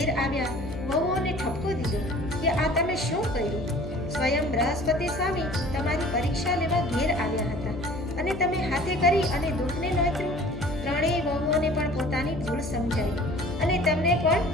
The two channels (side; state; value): left; noise; hum, 10 dB below the sound